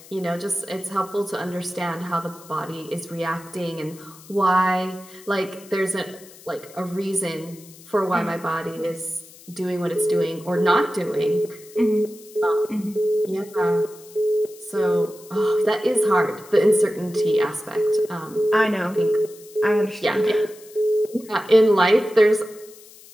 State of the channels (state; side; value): noise; left; hiss, 21 dB below the sound